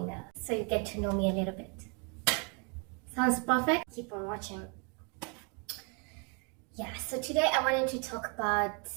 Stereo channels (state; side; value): quieter; left; 35.8 dB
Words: so you get to know me a little bit. Sounds perfect? Keep on watching. Yeah, so today I wanted to talk about